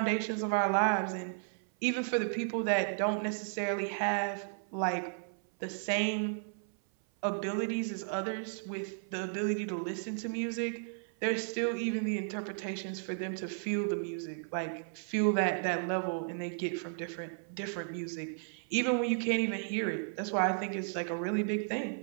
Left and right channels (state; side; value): silent; left; 55 dB below the other